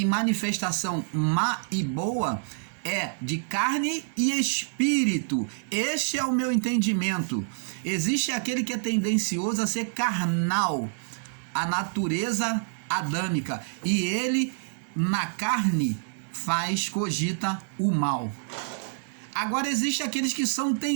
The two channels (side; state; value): left; silent; digital silence